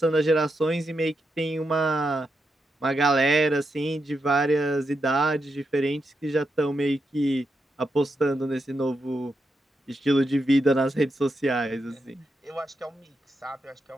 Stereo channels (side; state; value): both; normal; correlation 0.84